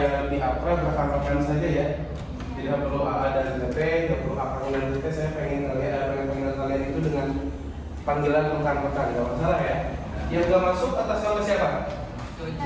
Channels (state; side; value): identical; both; correlation 1.00